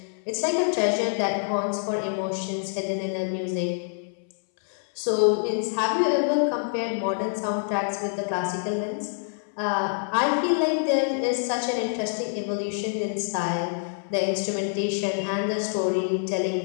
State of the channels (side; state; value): right; silent; 61 dB below the other